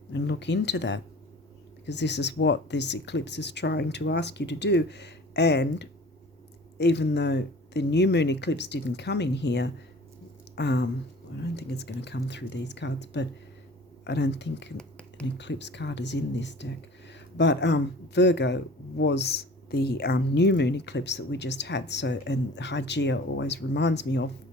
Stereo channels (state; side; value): normal; both; correlation 0.44